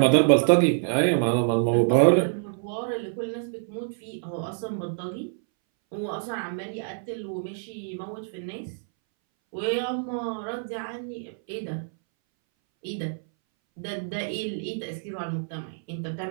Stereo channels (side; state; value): left; silent; 60 dB below the other